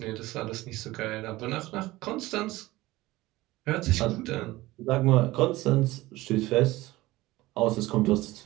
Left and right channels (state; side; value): quieter; left; 18.7 dB